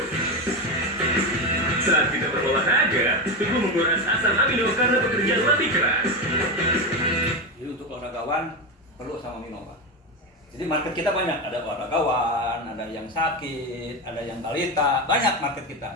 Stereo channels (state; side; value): normal; both; correlation 0.15